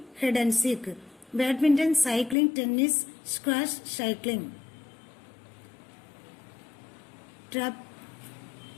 hide and seek, badminton, cycling, tennis, squash, cycling,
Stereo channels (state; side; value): drops out; right; at 2.4 s